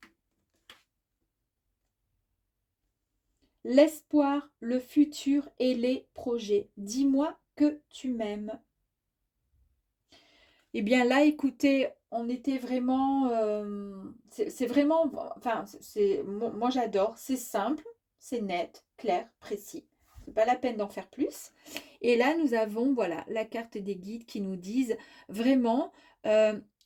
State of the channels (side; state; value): both; identical; correlation 1.00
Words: L'espoir, le futur et les projets. Dis-moi que tu m'aimes. Eh bien là, écoutez, on était vraiment... c'est vraiment... Enfin, moi j'adore. C'est simple, c'est net, clair, précis. C'est pas la peine d'en faire plus. Et là, nous avons, voilà, la carte des guides qui nous disent vraiment